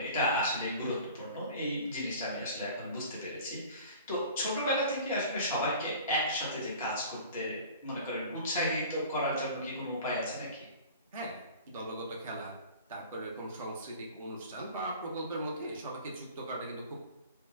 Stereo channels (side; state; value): both; inverted; correlation -0.42